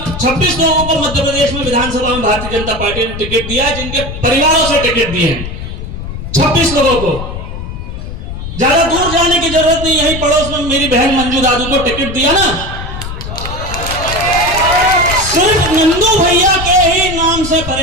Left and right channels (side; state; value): left; noise; rumble, 8 dB below the sound